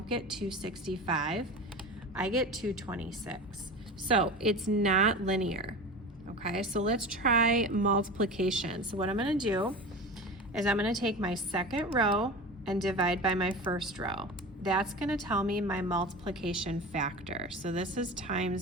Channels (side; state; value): both; normal; correlation 0.31